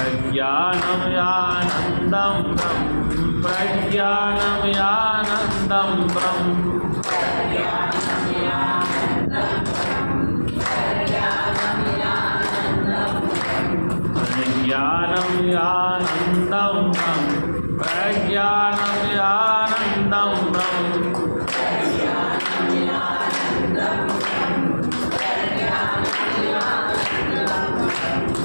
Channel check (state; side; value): inverted; both; correlation -1.00